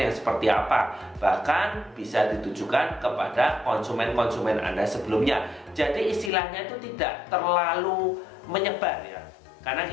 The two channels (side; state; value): right; drops out; at 6.3 s